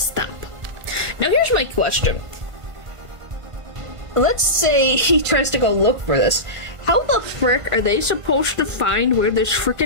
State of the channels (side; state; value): left; late; 1.5 ms